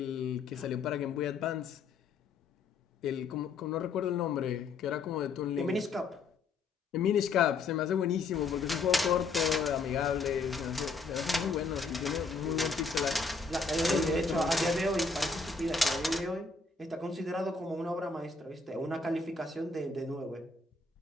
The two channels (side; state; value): right; quieter; 4.1 dB